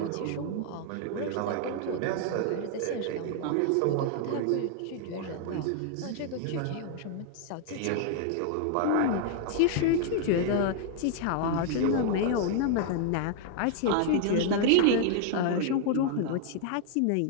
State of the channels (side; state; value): both; different; correlation 0.00